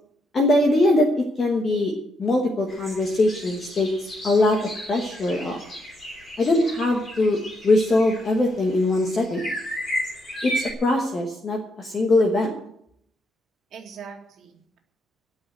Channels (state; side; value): normal; both; correlation 0.78